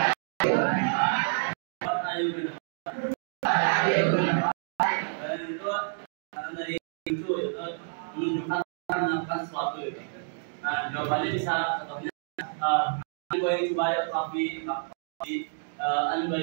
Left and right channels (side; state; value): left; silent; digital silence